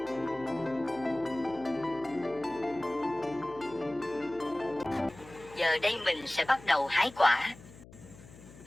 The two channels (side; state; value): left; noise; hum, 20 dB below the sound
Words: Giờ đây mình sẽ bắt đầu hái quả.